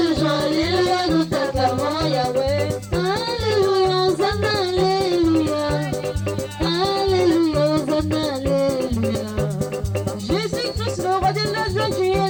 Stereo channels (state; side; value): identical; both; correlation 1.00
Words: joie, Alléluia, nous t'acclamons Yahweh. Alléluia, Hosanna, Alléluia. Alléluia, Hosanna, Alléluia. Jésus-Christ, le roi de la joie, tu es